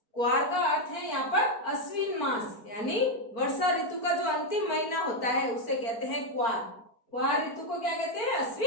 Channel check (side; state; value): right; late; 4.4 ms